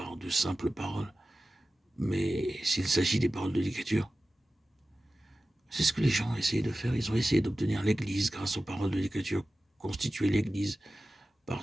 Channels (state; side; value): normal; both; correlation 0.95